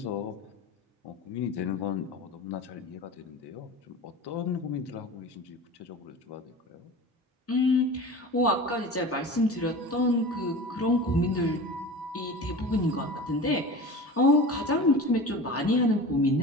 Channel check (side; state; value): both; normal; correlation 0.34